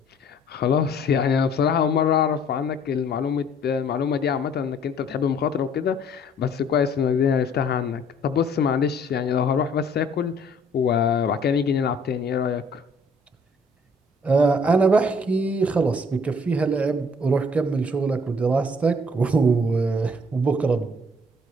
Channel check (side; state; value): both; normal; correlation 0.58